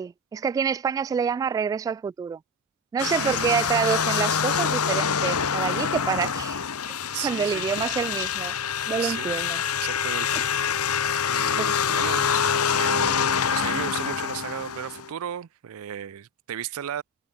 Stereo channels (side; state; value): both; normal; correlation 0.15